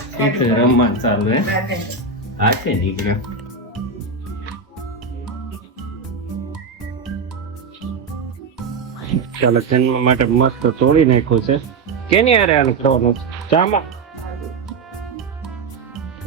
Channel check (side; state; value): left; quieter; 4.5 dB